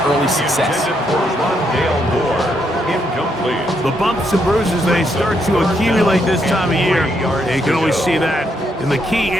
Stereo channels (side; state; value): both; normal; correlation 0.76